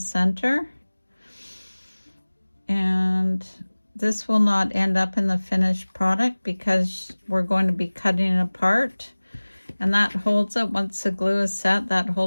And this will not end up in the finished product because we're going to be cutting it apart, and that holds it. Once the glue is set, that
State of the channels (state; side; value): inverted; both; correlation -1.00